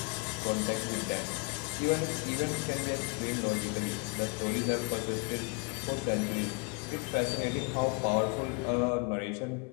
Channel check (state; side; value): quieter; right; 33.9 dB